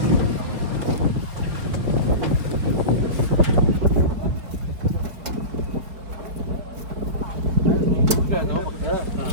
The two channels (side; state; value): left; late; 4.8 ms